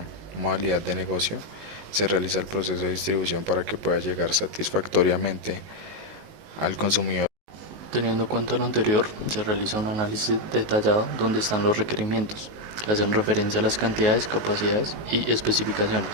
modalidad de negocio. Se realiza el proceso de distribución para que pueda llegar satisfactoriamente al consumidor. Teniendo en cuenta lo anterior, se realiza un análisis detallado donde están los requerimientos, que hacen referencia a las cantidades, capacidades y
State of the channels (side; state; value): left; late; 19 ms